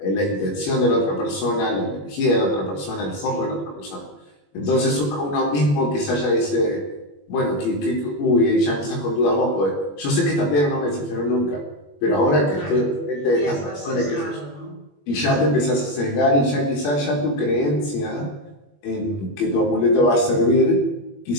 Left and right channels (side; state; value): right; late; 21 ms